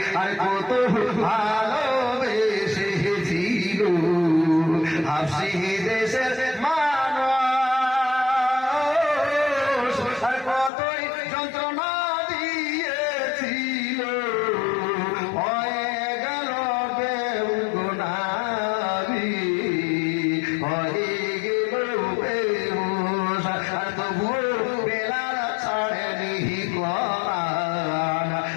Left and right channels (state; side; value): drops out; right; at 10.7 s